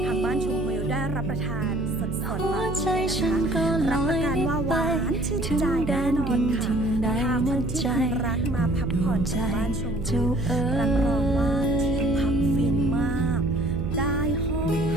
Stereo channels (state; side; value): noise; right; hum, 5 dB below the sound